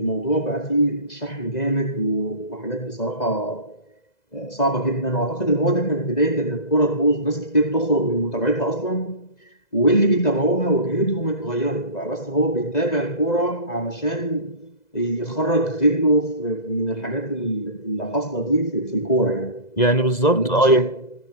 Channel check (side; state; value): right; late; 2.0 ms